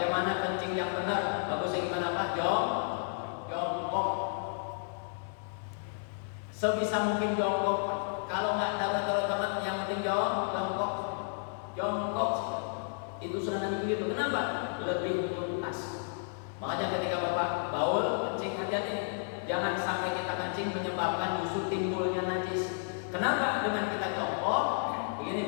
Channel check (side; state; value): right; silent; 56 dB below the other